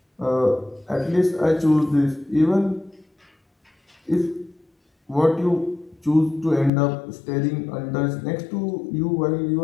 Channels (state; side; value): drops out; right; at 6.7 s